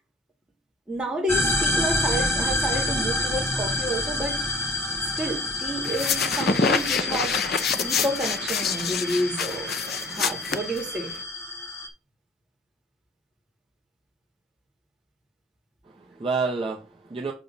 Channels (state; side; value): normal; both; correlation 0.48